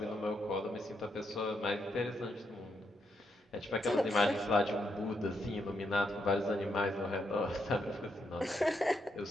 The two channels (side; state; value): both; normal; correlation 0.80